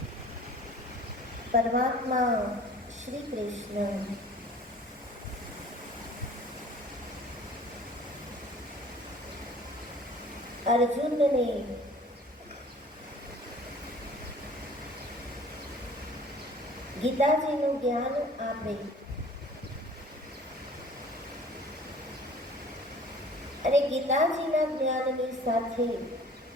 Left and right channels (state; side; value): normal; both; correlation 0.49